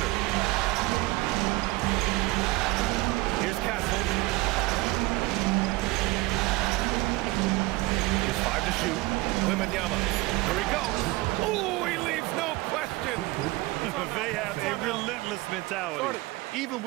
Here's Castle. Here's 5 to shoot. Wembanyama. Here he goes. Oh, he leaves no question. They have a relentless mentality, even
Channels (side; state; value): left; quieter; 21.1 dB